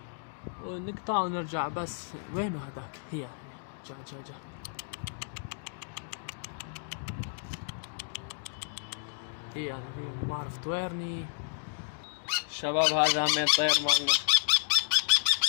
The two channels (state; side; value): silent; right; digital silence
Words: ونقطع ونرجع. بس وينو هذاك؟ هي جا هي ما اعرف طويرني. شباب هذا همين طير مالنا.